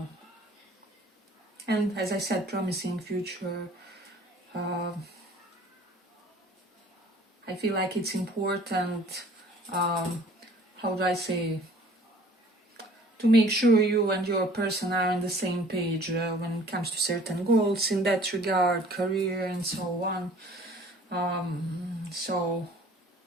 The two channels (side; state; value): both; normal; correlation 0.51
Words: and, as I said, promising future. I feel like it's important, how do I say, to make sure you and your person are on the same page when it comes to certain goals in that regard, career and so on. So